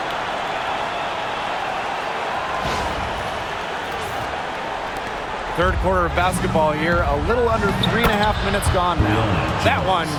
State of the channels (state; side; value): identical; both; correlation 1.00